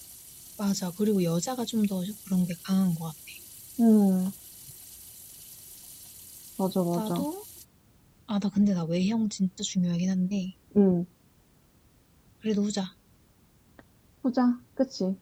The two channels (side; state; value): both; identical; correlation 1.00